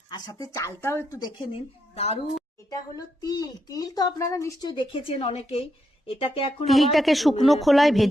আর সাথে চালটাও একটু দেখে নিন। দারুণ। এটা হলো তিল। তিল তো আপনারা নিশ্চয়ই দেখেছেন অনেকেই। এটাকে এখন তিলটাকে শুকনো খোলায়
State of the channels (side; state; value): both; normal; correlation 0.81